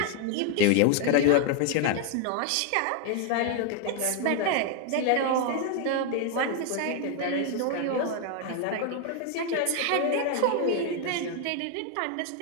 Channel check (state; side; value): different; both; correlation 0.01